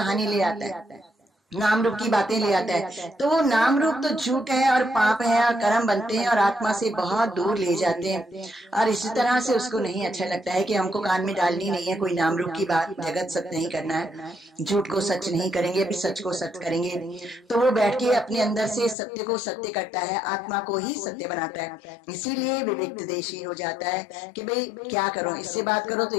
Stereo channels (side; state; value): right; drops out; at 18.9 s